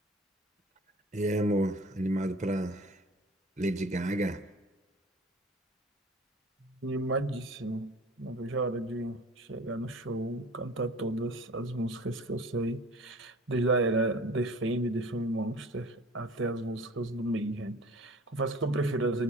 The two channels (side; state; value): both; normal; correlation 0.43